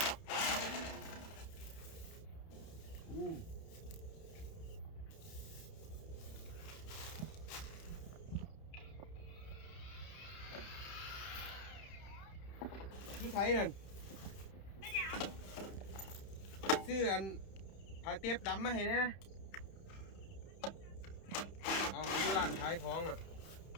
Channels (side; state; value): right; late; 30 ms